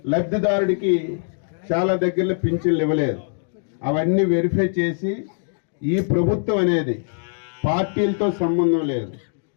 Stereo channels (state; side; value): silent; right; digital silence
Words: లబ్ధిదారుడికి చాలా దగ్గరలో పింఛన్లు ఇవ్వలేదు. అవన్నీ వెరిఫై చేసి ఈ ప్రభుత్వం అనేది పార్టీలతో సంబంధం లేదు,